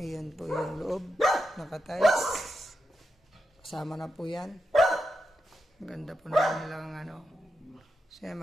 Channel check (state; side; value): normal; both; correlation 0.87